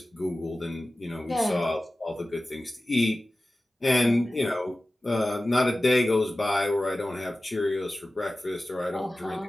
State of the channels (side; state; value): both; normal; correlation 0.96